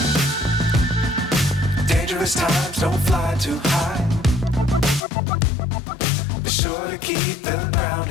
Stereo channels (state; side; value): drops out; right; at 5.0 s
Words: Dangerous times, don't fly too high. Be sure to keep the ground